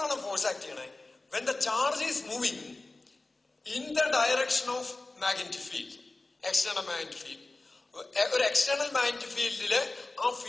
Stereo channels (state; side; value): quieter; right; 3.2 dB